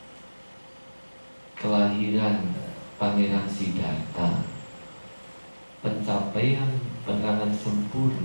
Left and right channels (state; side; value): inverted; both; correlation -1.00